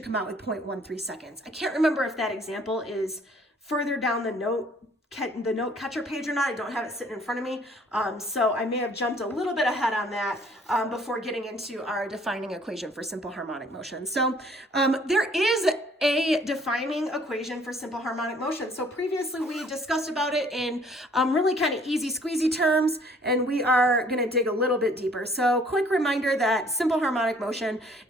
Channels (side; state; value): both; normal; correlation 0.58